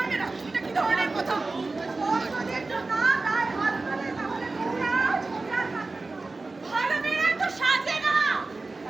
না এটা কি ধরনের কথা ভালো মেয়ে তো সাজে না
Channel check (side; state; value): left; quieter; 3.5 dB